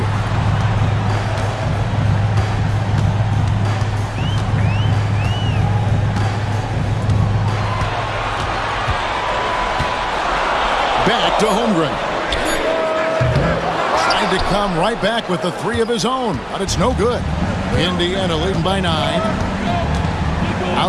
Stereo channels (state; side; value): identical; both; correlation 1.00